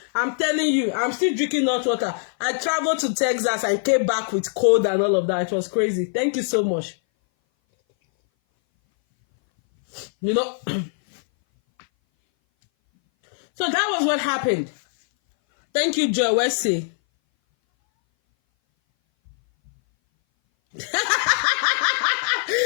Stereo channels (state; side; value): silent; right; 60 dB below the other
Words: I'm telling you, I'm still drinking hot water. I traveled to Texas and came back with cold and all of that. It was crazy. Thank you so much. So that was what happened. Thank you, Joe Wesley.